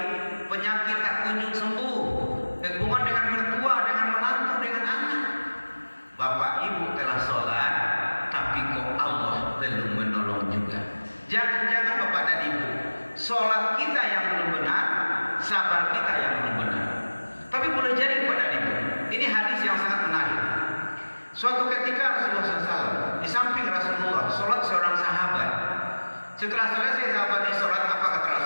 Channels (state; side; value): inverted; both; correlation -1.00